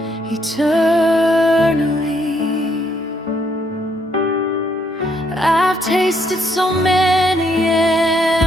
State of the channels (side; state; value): both; normal; correlation 0.71